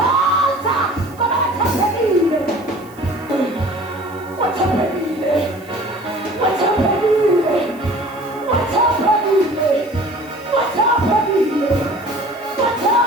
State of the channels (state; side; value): noise; right; hiss, 26 dB below the sound